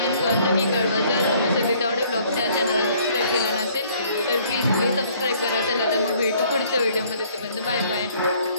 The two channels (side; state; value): both; inverted; correlation -0.60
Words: करून नक्की कळवा. जर तुम्ही सध्या तेवढे ब्लॉगच्या चॅनलला सबस्क्राईब केला नसेल तर प्लीज सबस्क्राईब करा. चला तर मग भेटू पुढच्या व्हिडिओमध्ये. तोपर्यंत बाय